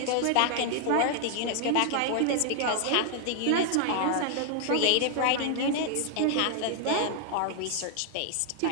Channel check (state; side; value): different; both; correlation 0.00